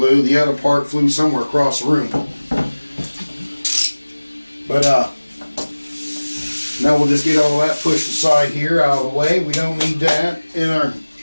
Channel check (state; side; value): inverted; both; correlation -1.00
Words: The other part flew somewhere across the room. But now we'll just get all that pushed aside here, out of the way. We don't need that in our...